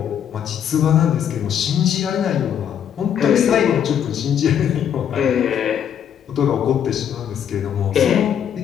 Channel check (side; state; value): right; quieter; 9.0 dB